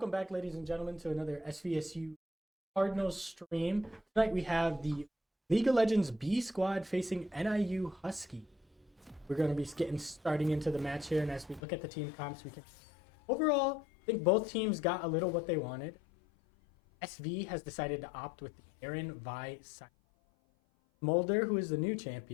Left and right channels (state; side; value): drops out; right; at 11.6 s